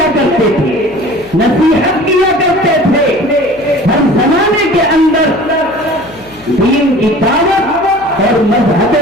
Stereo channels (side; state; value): left; noise; hum, 24 dB below the sound